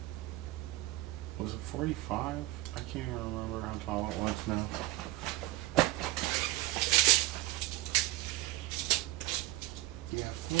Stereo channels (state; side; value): quieter; left; 18.1 dB